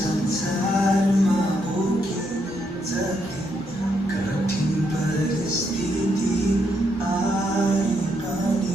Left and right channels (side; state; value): both; normal; correlation 0.77